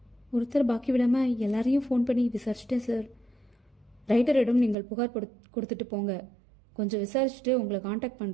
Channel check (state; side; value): drops out; left; at 4.8 s